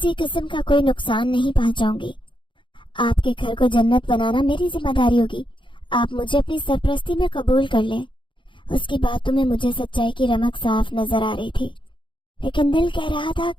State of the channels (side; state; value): right; late; 0.24 ms